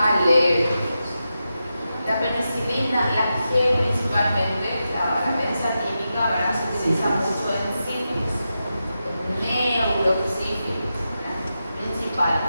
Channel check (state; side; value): inverted; both; correlation -0.89